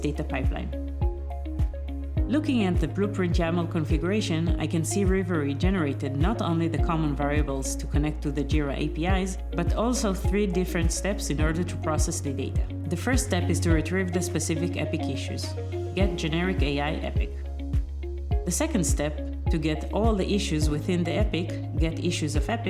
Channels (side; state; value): both; identical; correlation 1.00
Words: pipeline. Looking at the blueprint YAML configuration, I can see Rivery generated not only the common variables to connect to the Jira APIs, but also 3 different steps in order to process the data. The first step is to retrieve the specific epic issues. Get generic AI epic. The second step, to get all the issues within the epic, get issues of